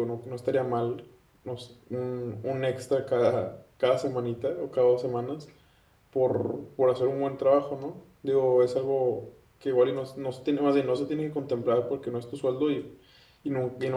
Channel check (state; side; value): identical; both; correlation 1.00